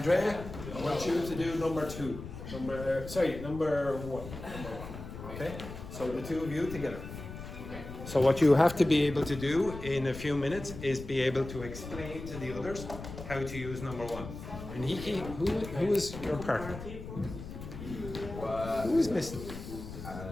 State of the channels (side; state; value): left; noise; rumble, 11 dB below the sound